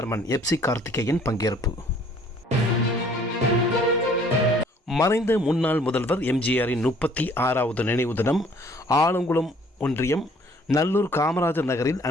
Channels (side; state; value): both; normal; correlation 0.58